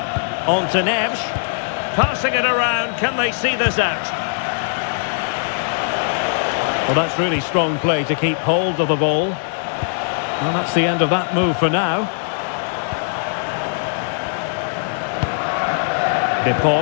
On to Neves. Passing it around. Can they see this out? Well, that's really strong play to keep hold of the ball. Well, that's the end of that move for now. De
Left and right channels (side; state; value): right; silent; digital silence